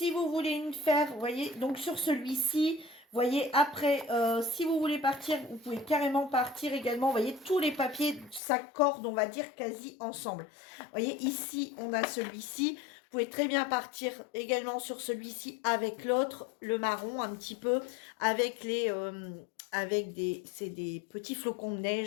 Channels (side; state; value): right; drops out; at 8.4 s